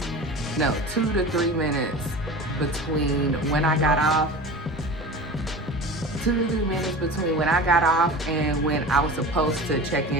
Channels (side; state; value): both; normal; correlation 0.34